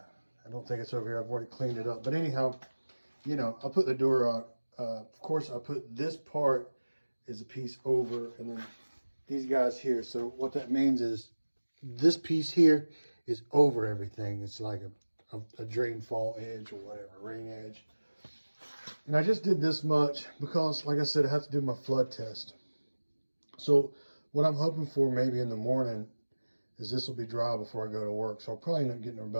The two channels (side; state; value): both; inverted; correlation -1.00